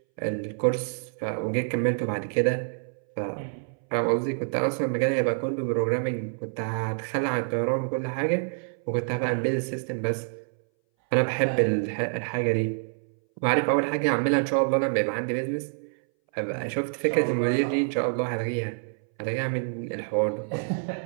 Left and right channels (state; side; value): silent; left; 60 dB below the other